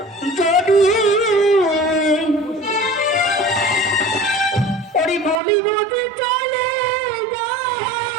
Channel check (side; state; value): left; drops out; at 5.4 s